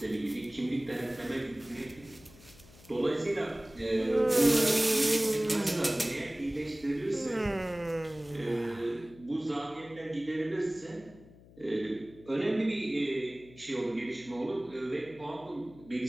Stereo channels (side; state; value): left; noise; hum, 22 dB below the sound